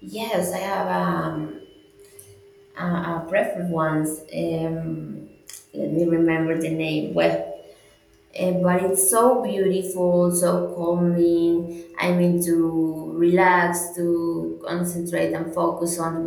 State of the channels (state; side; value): identical; both; correlation 1.00